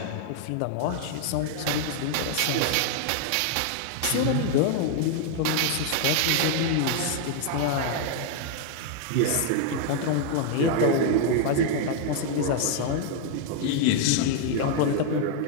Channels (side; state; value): both; different; correlation 0.00